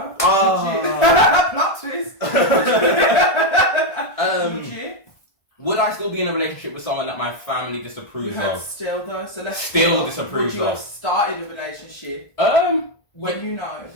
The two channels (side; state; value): right; late; 1.5 ms